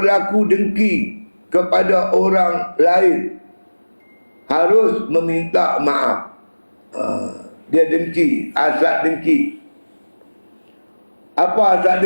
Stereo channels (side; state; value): both; inverted; correlation -1.00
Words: dengki kepada orang lain harus meminta maaf. Dia dengki, asap dengki. Apa asap